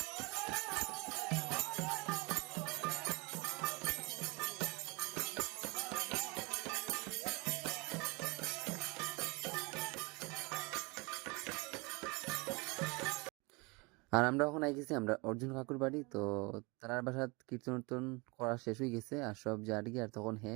আর আমরা এখন আই গেছি আমরা অর্জুন কাকুর বাড়ি। তো তার বাসাত কীর্তন উর্তন করা শেষ হয়ে গেছে আর সব জারি। আর তখন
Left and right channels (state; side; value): quieter; left; 27.6 dB